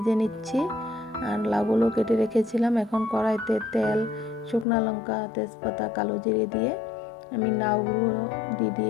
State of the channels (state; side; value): drops out; right; at 4.7 s